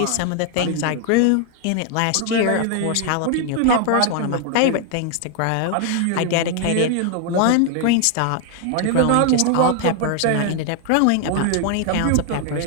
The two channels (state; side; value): different; both; correlation 0.00